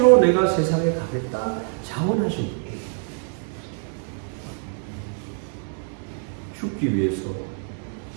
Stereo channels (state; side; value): silent; left; 57 dB below the other